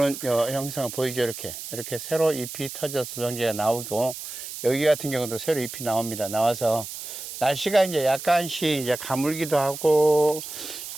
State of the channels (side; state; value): right; noise; hiss, 9 dB below the sound